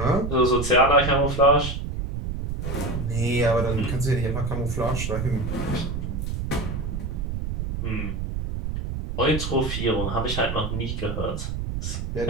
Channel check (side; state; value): right; noise; rumble, 3 dB below the sound